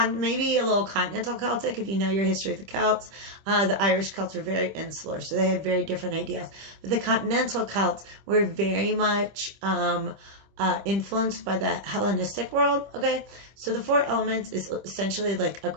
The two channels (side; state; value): left; late; 25 ms